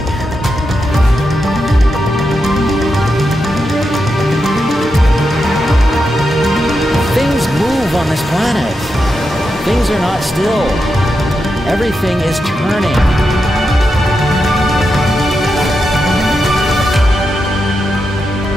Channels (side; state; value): both; normal; correlation 0.86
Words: Things move on this planet. Things are not still. Everything is turning.